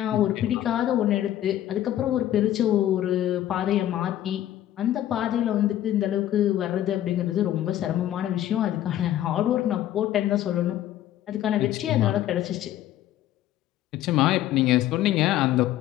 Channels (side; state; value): right; quieter; 12.6 dB